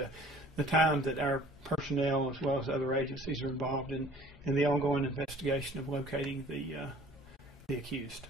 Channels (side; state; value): both; normal; correlation 0.51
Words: the time that our personnel, as well as other agencies, are involved in the ongoing investigation of locating the accused.